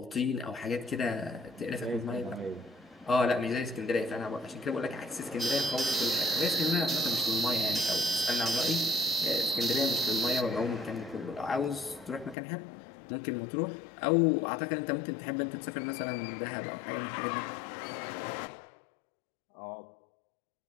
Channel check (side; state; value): right; drops out; at 12.4 s